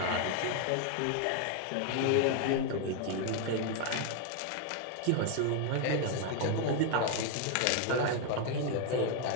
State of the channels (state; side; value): different; both; correlation 0.00